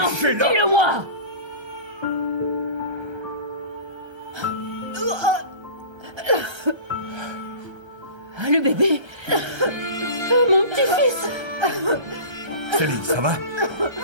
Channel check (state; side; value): late; left; 1.3 ms